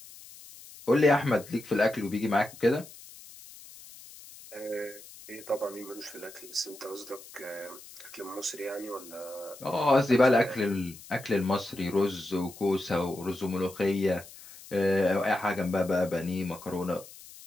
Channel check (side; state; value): left; noise; hiss, 18 dB below the sound